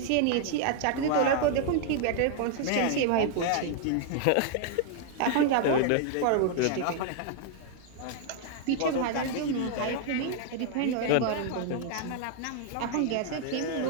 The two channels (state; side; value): different; both; correlation 0.00